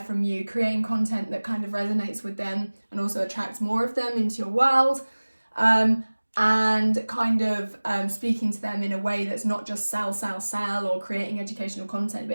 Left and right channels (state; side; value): inverted; both; correlation -1.00